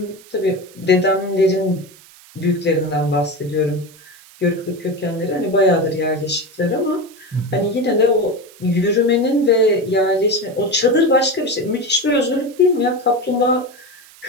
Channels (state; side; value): noise; right; hiss, 23 dB below the sound